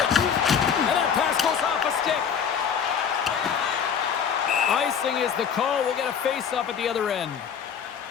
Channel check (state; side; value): quieter; right; 7.4 dB